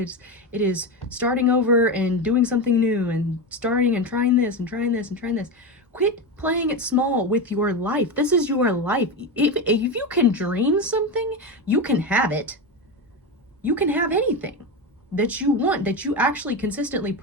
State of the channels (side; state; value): both; normal; correlation 0.17